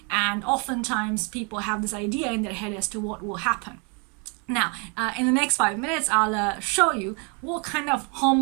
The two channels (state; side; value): quieter; left; 35.0 dB